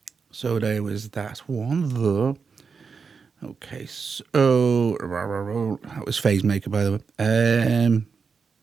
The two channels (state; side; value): quieter; left; 5.4 dB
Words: there was that one there. Okay, so that was Phasemaker, by the way.